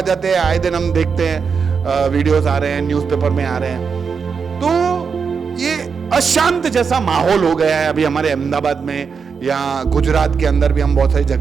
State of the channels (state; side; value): quieter; left; 5.8 dB